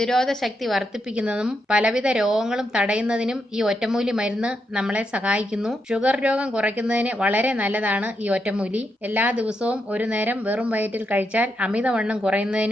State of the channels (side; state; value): both; normal; correlation 0.82